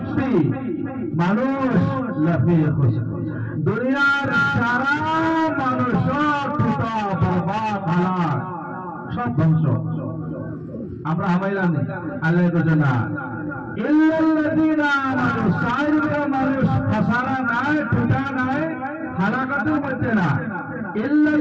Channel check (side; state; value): both; identical; correlation 1.00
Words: মানুষ লাফিয়ে খুশি দুনিয়ার সারা মানুষ টুটা বরবাদ হালাক সব ধ্বংস আমরা হামাইলাম নেই আল্লাহ বলেন না ইল্লাল্লাযীনা আমানু সাইরকা মানুষ খাসারা নাই টুটা নাই হালাকাতের মধ্যে না